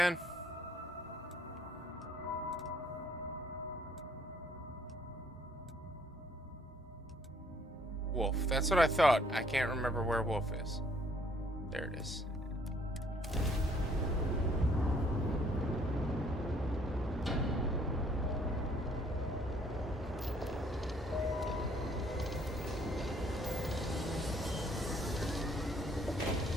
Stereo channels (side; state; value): both; normal; correlation 0.63